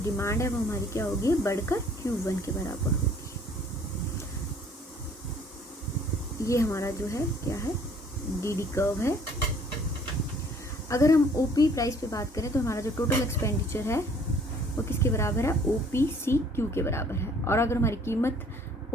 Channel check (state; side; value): normal; both; correlation 0.57